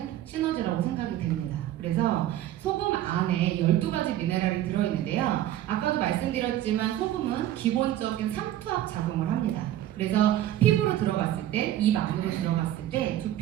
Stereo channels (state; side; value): quieter; left; 12.9 dB